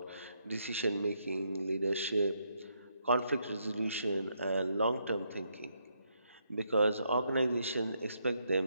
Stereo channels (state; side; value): inverted; both; correlation -0.76